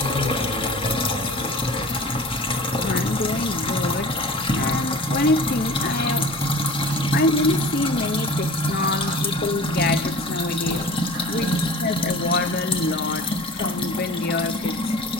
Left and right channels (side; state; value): both; normal; correlation 0.41